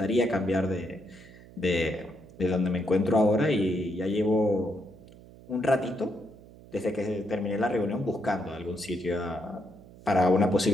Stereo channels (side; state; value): right; noise; hum, 21 dB below the sound